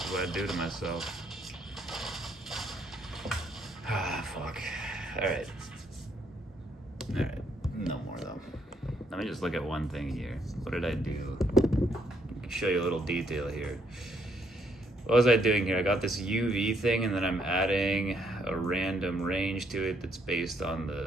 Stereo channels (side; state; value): both; normal; correlation 0.72